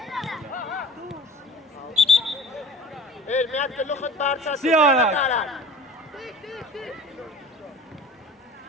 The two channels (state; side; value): normal; both; correlation 0.41